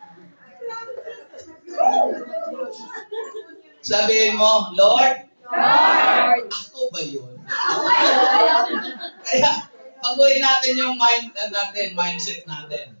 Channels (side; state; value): both; inverted; correlation -1.00